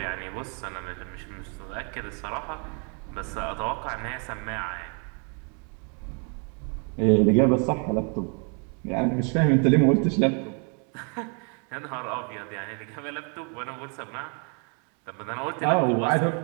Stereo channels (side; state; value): left; quieter; 38.7 dB